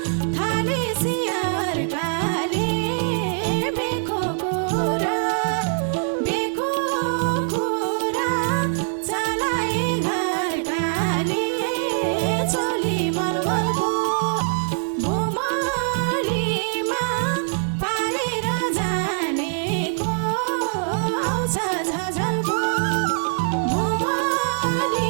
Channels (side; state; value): left; silent; digital silence